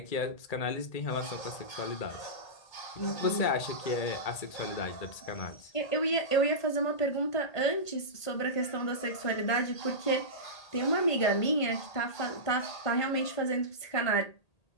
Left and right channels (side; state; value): right; late; 1.8 ms